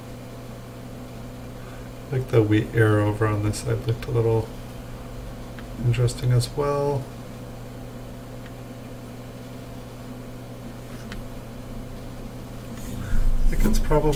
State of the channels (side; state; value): both; identical; correlation 1.00